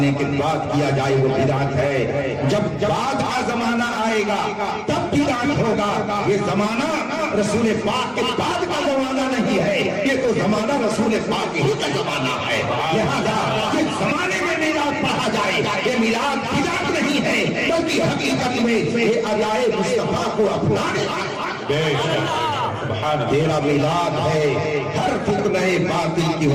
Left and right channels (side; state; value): both; identical; correlation 1.00